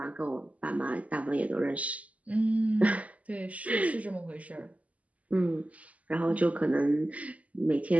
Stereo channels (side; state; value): left; late; 0.070 ms